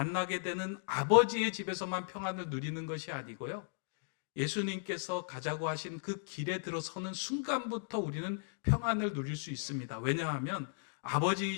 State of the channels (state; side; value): silent; right; digital silence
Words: 되는 아버지의 집에서만 평안을 누리는 것이 아니고요, 예수님께서 가자고 하신 그 길에 들어서는 순간부터 우리는 평안을 누릴 수 있습니다. 왜냐하면